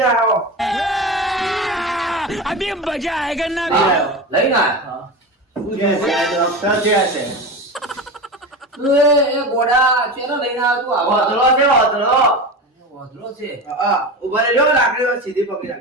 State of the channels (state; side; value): normal; both; correlation 0.25